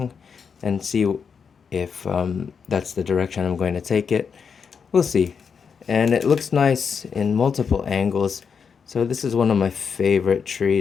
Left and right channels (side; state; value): right; quieter; 6.3 dB